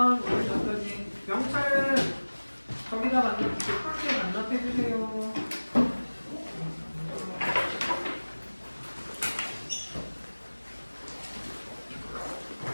오늘 여기까지. 명찰은 저기다 풀게 반납해주세요.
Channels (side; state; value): both; inverted; correlation -1.00